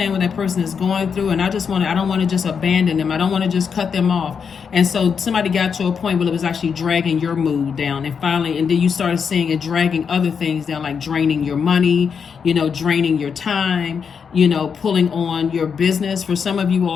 what that person is going through, and I don't want to just abandon them. I don't want to just cut them off. And so somebody got to a point where it was actually dragging your mood down. And finally, and then you started seeing it dragging other things down, like draining your money, draining your time, pulling on your business. For some of you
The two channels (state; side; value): quieter; right; 6.4 dB